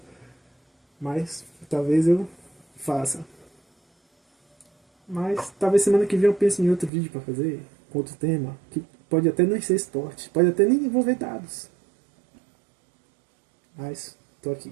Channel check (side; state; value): left; drops out; at 6.9 s